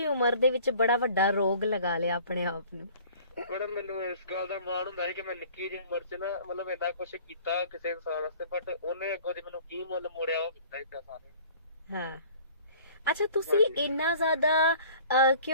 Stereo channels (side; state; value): both; inverted; correlation -0.49